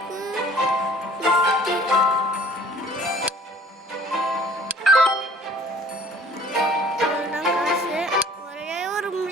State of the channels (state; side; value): normal; both; correlation 0.50